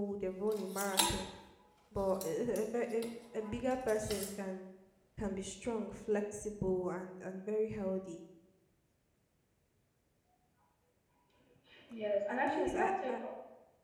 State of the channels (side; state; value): both; identical; correlation 1.00